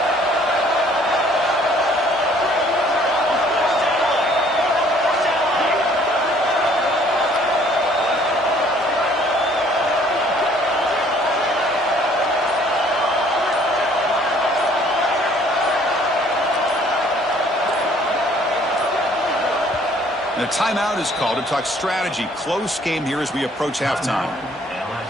And a timeout is called to talk strategy. Close game here as we approach halftime.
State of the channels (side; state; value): both; normal; correlation 0.59